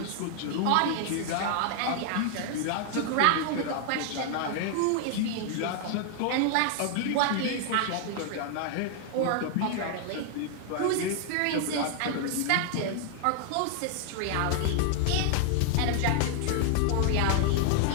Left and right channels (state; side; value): different; both; correlation 0.00